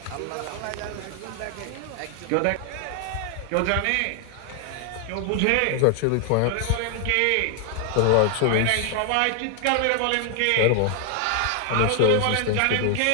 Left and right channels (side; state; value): both; different; correlation 0.00